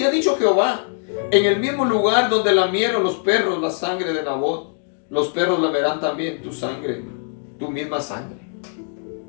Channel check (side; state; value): right; silent; 61 dB below the other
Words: ha dicho Jehová, en el mismo lugar donde lamieron los perros la sangre de Nabot, los perros lamerán también tu sangre, tu misma sangre.